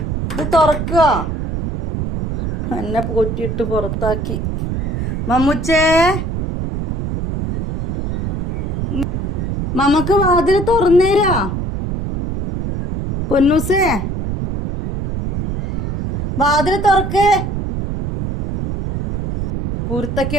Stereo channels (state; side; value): noise; right; rumble, 3 dB below the sound